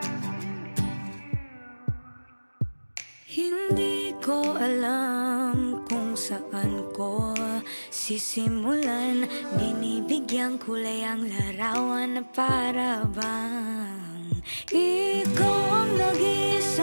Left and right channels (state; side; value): inverted; both; correlation -1.00